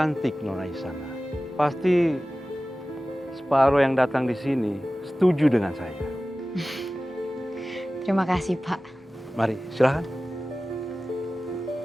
Nona Isana. Pasti separuh yang datang di sini setuju dengan saya. Terima kasih, Pak. Mari, silakan.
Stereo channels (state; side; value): normal; both; correlation 0.96